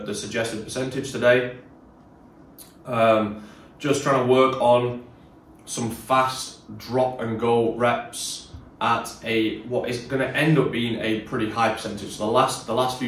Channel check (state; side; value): identical; both; correlation 1.00